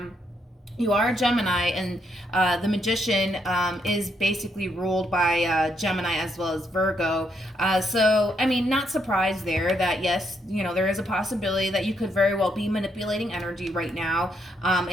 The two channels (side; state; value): both; normal; correlation 0.76